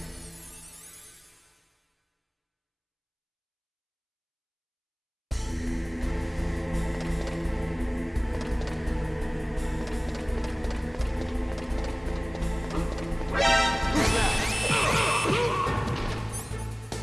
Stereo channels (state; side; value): identical; both; correlation 1.00